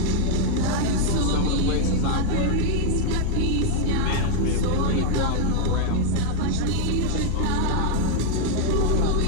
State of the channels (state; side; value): different; both; correlation 0.00